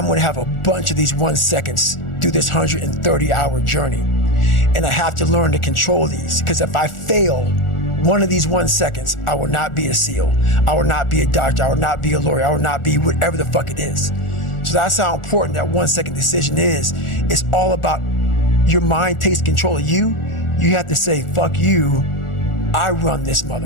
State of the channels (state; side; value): late; right; 1.4 ms